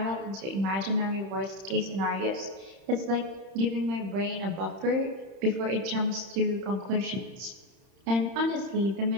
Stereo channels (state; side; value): late; left; 31 ms